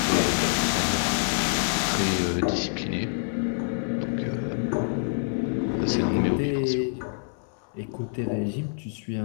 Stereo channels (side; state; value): right; silent; 59 dB below the other